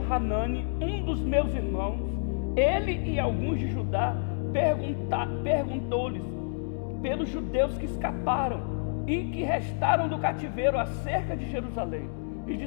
um dos meus irmãos, ele e alguns de Judá, perguntou-lhes pelos judeus que escaparam e que restaram do cativeiro acerca de Jerusalém, e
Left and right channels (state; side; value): silent; right; digital silence